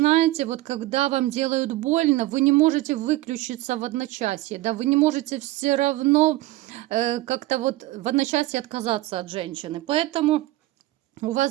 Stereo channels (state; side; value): quieter; left; 17.5 dB